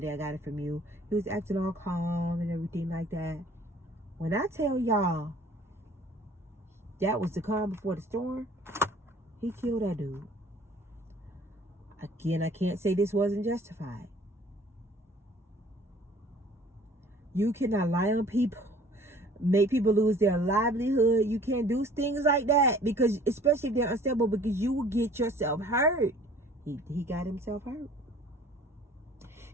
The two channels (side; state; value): both; normal; correlation 0.52